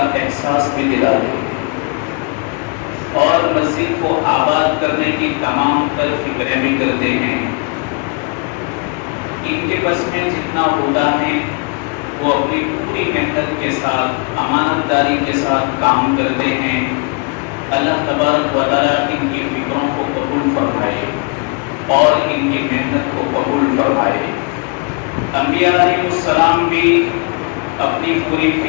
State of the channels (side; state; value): right; quieter; 33.2 dB